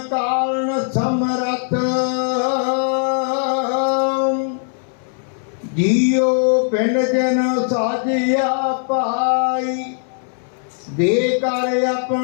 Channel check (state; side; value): silent; right; 62 dB below the other